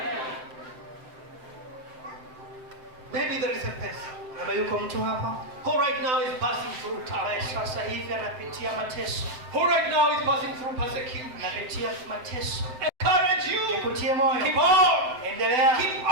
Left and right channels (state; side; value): late; left; 7.7 ms